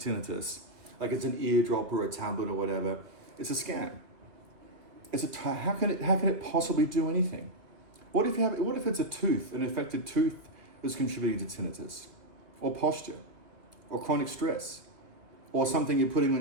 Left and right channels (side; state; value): left; late; 2.1 ms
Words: like it's an eardrop or a tablet or whatever, it's a scam. How can it possibly do anything? What if it's a tooth, an affected tooth that's contributing to tinnitus, or posture, or chronic stress, or something you're putting